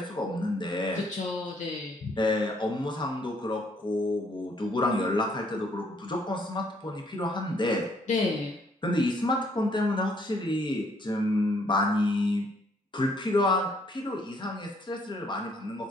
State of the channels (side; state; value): both; normal; correlation 0.67